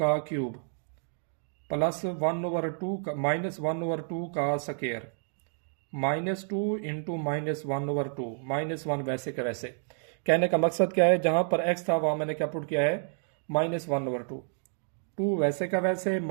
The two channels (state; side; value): silent; left; 58 dB below the other